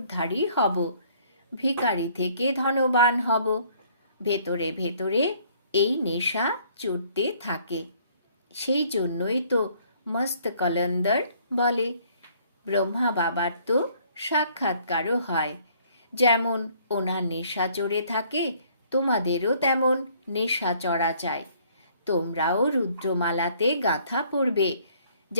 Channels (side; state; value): both; inverted; correlation -0.61